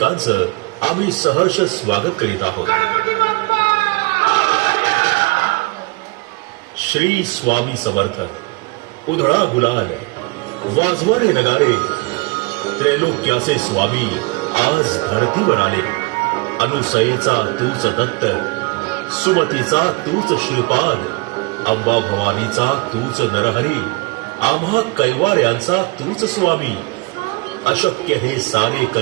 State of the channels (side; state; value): left; quieter; 27.0 dB